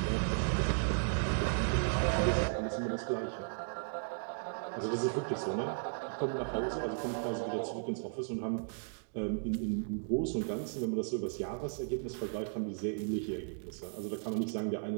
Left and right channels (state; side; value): silent; left; digital silence